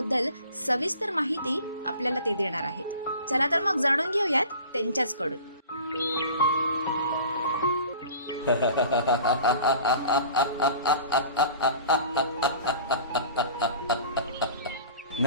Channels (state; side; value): inverted; both; correlation -0.44